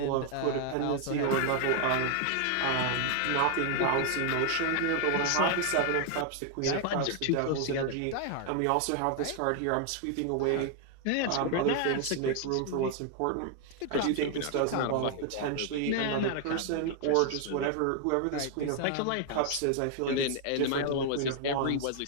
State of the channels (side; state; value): both; different; correlation 0.00